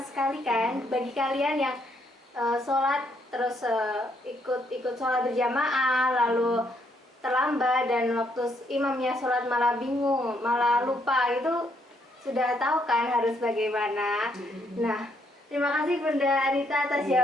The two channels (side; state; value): both; normal; correlation 0.72